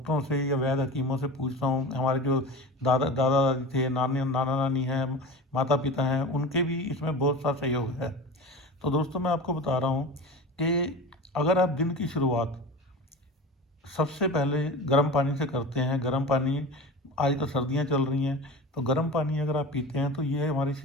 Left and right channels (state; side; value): normal; both; correlation 0.32